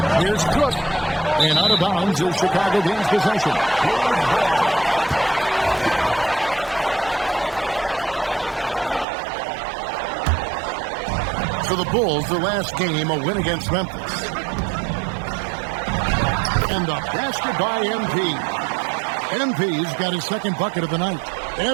Here's Cook. And out of bounds is Chicago gains possession. For the Bulls, the last game, a win against Memphis. And the basket by MP. MP's got his second bucket of the night.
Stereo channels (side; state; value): left; drops out; at 9.1 s